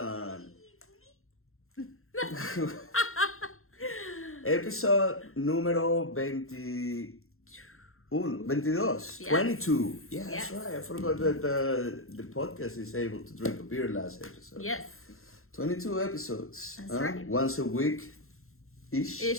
Episode número 22. Yes. 22. Yeah, yes. That's right. I forgot that the podcast is able to drink a beer last episode. Yes. 22 episodes. That's right. Once a week.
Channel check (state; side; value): late; right; 0.62 ms